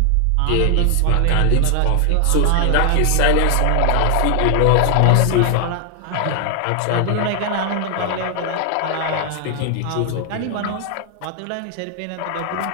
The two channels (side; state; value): both; different; correlation 0.00